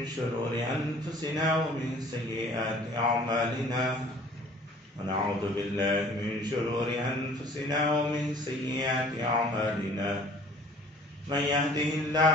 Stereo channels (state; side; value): normal; both; correlation 0.51